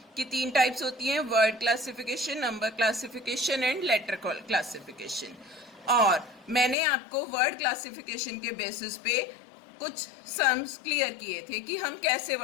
कि 3 टाइप्स होती हैं, word classification, number classification and later classification. और मैंने आपको वर्ड क्लासिफिकेशन के बेसिस पे कुछ सम्स क्लियर किए थे कि हम कैसे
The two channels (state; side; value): drops out; right; at 6.8 s